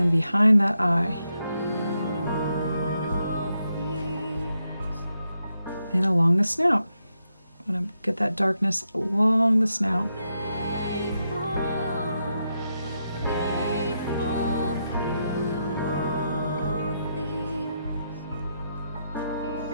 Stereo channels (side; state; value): both; inverted; correlation -0.83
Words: behind that eye. through all things. and along the snout. I want to get that darkness along the snout.